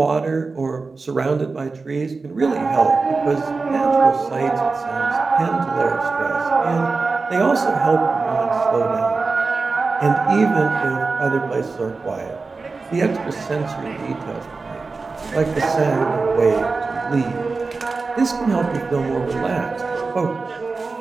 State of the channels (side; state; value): left; quieter; 4.1 dB